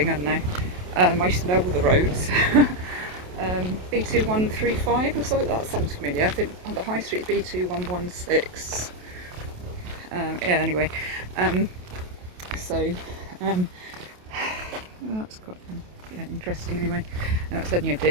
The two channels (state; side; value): late; left; 28 ms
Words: I don't know. I used to know all the roads. B2135 or something, that sounds familiar. I think on the high street B2116. Yeah, anyway. That's quite interesting anyway. Now it's only a